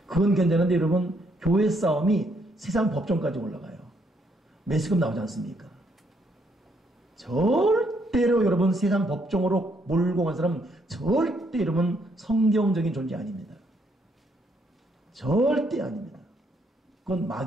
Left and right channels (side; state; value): both; normal; correlation 0.72